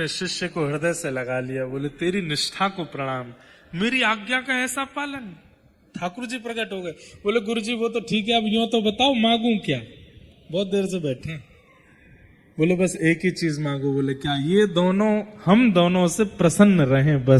शिष्य को हृदय से लगा लिया। बोले तेरी निष्ठा को प्रणाम, मेरी आज्ञा का ऐसा पालन। ठाकुर जी प्रकट हो गए। बोले गुरुजी वो तो ठीक है, अब यूं तो बताओ मांगू क्या? बहुत देर से बैठे। बोले बस एक ही चीज मांगो। बोले क्या? ये दोनों, हम दोनों से प्रसन्न रहें,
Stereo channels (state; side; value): identical; both; correlation 1.00